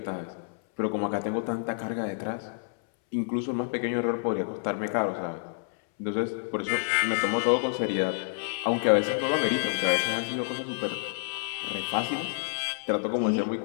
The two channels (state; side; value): silent; right; 59 dB below the other